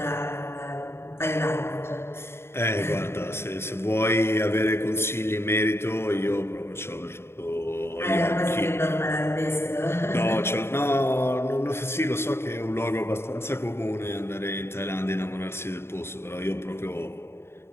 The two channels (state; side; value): late; right; 0.12 ms